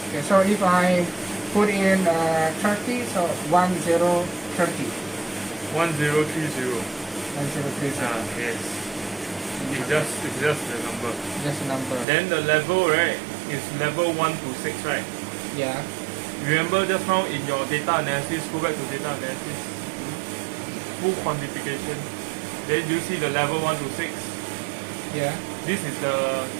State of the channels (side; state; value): left; drops out; at 12.1 s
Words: Okay, so if I put in 30, so 1030. 1030. 1030. Yes. It's just the number. Just a number. Then the level, right, is level 1 to 6, right? Yeah. Remember just now in your data analysis, go back to data analysis, full quantification. Then you see the level 1 to 6. Yeah. This is the